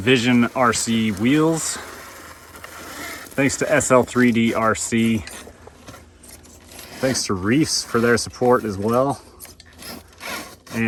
RC Wheels. Thanks to SL3D RC. Thanks to Reefs for their support as well.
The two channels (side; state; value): both; identical; correlation 1.00